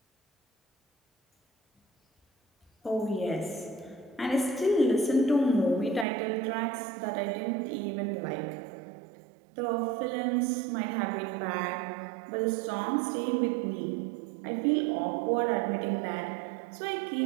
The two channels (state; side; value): drops out; left; at 6.1 s